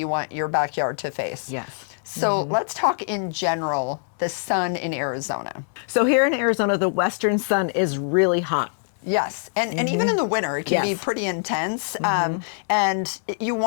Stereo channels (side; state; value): right; silent; digital silence